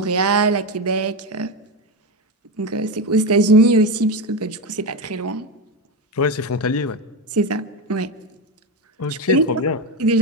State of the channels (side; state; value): both; normal; correlation 0.14